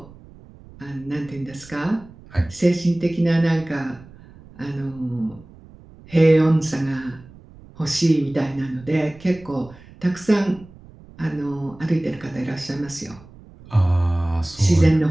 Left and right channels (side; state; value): right; noise; rumble, 22 dB below the sound